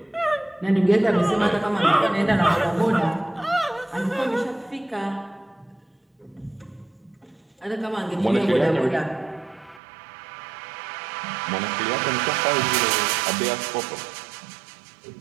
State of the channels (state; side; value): drops out; left; at 9.8 s